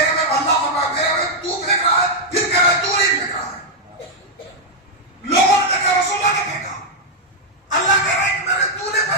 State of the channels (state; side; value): normal; both; correlation -0.03